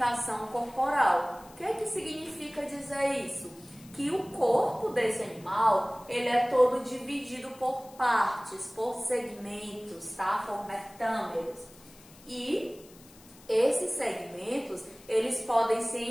corporal. O que é que significa dizer isso? Que o corpo desse animal, ele é todo dividido por partes, por segmentos, tá? Por metâmeros. E esses segmentos, eles podem se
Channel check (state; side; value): noise; left; hiss, 23 dB below the sound